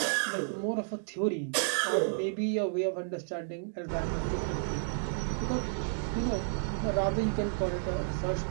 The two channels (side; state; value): left; silent; digital silence